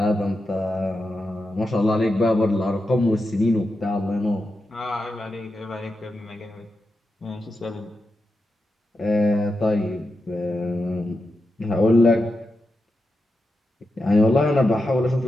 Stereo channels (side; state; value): both; normal; correlation 0.89